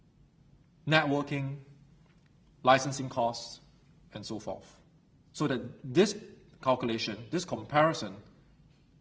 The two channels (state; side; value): identical; both; correlation 1.00